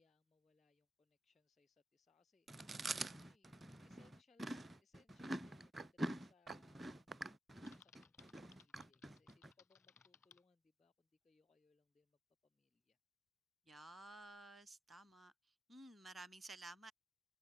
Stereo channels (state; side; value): normal; both; correlation 0.91